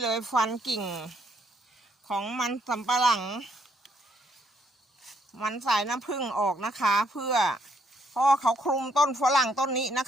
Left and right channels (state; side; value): normal; both; correlation 0.70